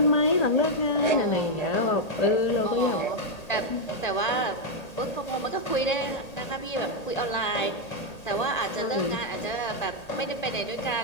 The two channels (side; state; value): right; late; 1.8 ms